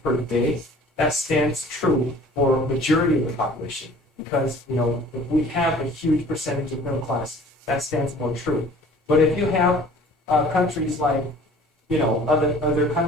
per day, that stands true for a majority of the population. Because if we have a huge percentage of middle class, that stands more true. But if you have countries like other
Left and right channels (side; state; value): both; normal; correlation 0.49